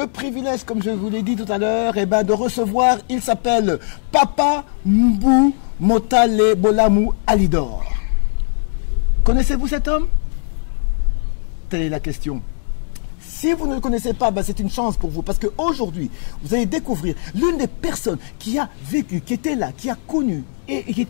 privilège, comme je vous l'ai dit tout à l'heure, eh ben, de recevoir, il s'appelle Papa Mbou Motale Bolamou Alidor. Connaissez-vous cet homme? Telle est la question. Si vous ne le connaissez pas, ben c'est une chance pour vous, parce qu'aujourd'hui, vous allez découvrir l'une des personnes qui a vécu, qui était là, qui a connu, et qui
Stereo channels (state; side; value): silent; right; digital silence